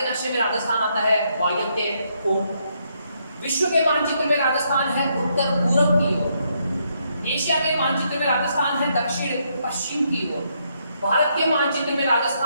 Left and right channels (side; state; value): both; inverted; correlation -0.75